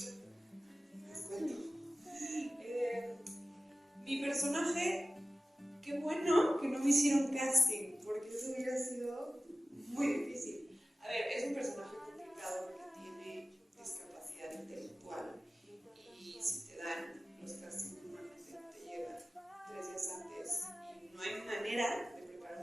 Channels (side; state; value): both; normal; correlation 0.96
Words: Mi personaje, qué bueno que no me hicieron casting, porque eso hubiera sido muy difícil. A ver, es un personaje complicado porque tiene discapacidad intelectual y si te dan los castings normalmente te llegan 3 días antes y no hay manera de